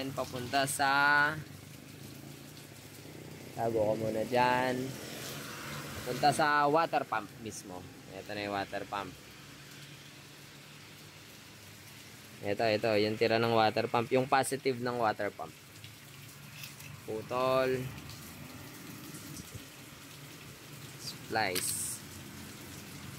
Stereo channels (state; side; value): identical; both; correlation 1.00